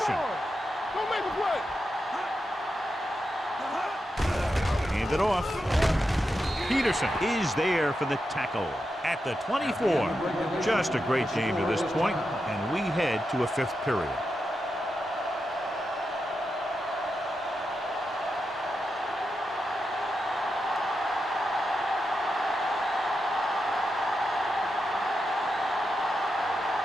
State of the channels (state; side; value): normal; both; correlation 0.87